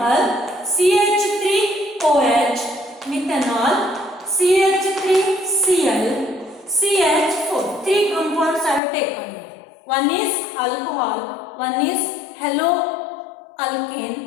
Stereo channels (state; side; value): drops out; right; at 8.8 s